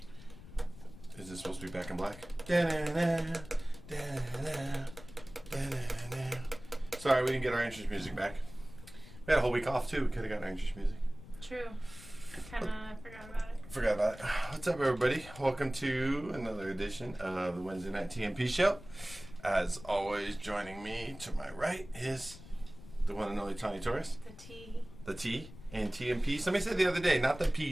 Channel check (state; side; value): noise; left; rumble, 16 dB below the sound